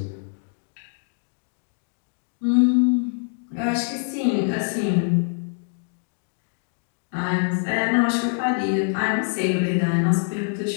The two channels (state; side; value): silent; right; 62 dB below the other